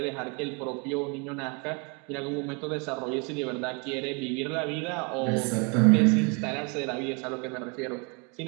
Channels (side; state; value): left; quieter; 33.0 dB